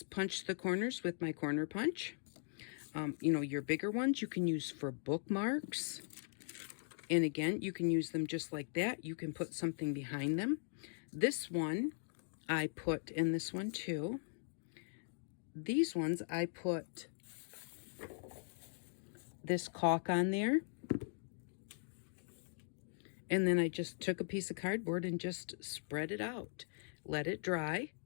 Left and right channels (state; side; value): silent; right; digital silence